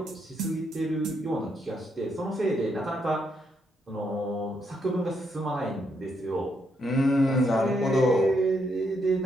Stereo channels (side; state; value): both; normal; correlation 0.77